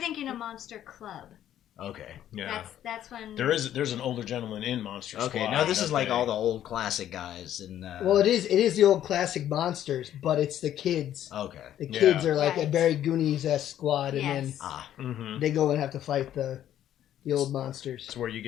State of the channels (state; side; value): quieter; right; 11.4 dB